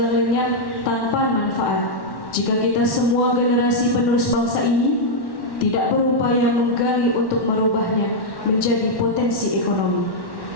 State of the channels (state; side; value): late; right; 1.1 ms